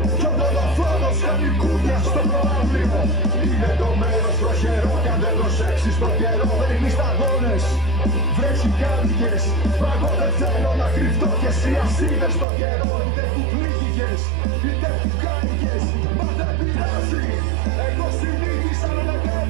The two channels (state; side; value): drops out; left; at 12.5 s